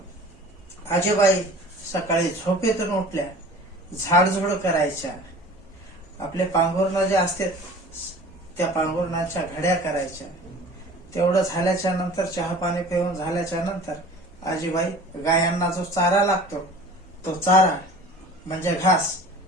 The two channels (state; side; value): normal; both; correlation 0.43